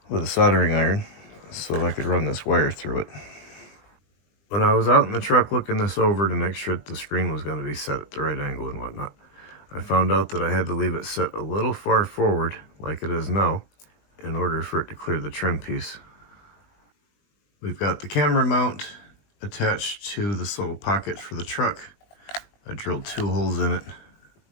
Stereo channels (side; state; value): right; late; 20 ms